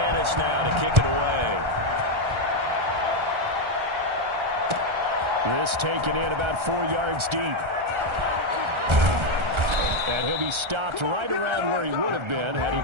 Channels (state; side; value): late; left; 1.3 ms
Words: now to kick it away. This taken in about 4 yards deep. And he'll be stopped right around where he would have been had he